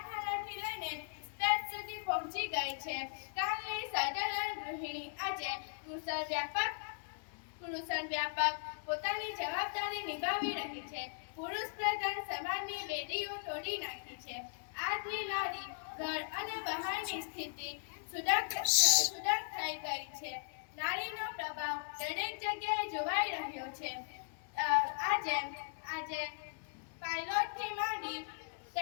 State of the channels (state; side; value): silent; right; 52 dB below the other